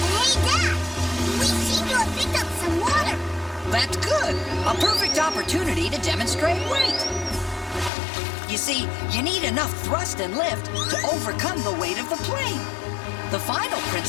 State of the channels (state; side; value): drops out; right; at 7.9 s